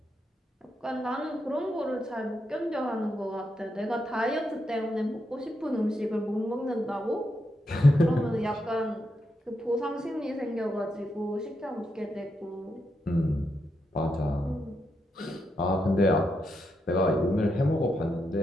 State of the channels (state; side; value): normal; both; correlation 0.83